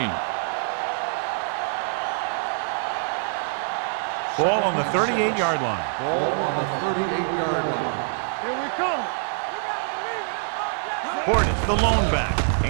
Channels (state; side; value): silent; left; digital silence